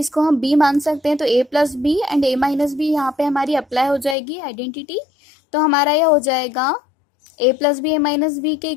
हम b मान सकते हैं। तो a plus B and a minus B यहाँ पे हमारी अप्लाई हो जाएगी आइडेंटिटी। तो हमारा यह हो जाएगा a plus B a minus B के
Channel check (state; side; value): drops out; right; at 4.2 s